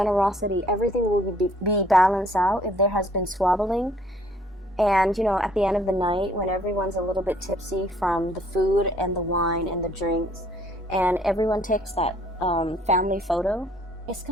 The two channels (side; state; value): both; normal; correlation 0.61